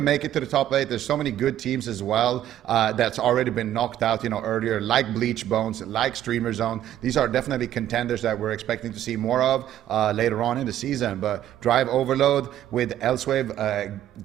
make it to the top 8. There's so many good teams as well that's already been knocked out, earlier, like Bleach Bones, like Streamer Zone. These are definitely contenders that we're expecting to see more of later on in the season. But Drive Overload with Elsewave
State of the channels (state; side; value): quieter; left; 12.0 dB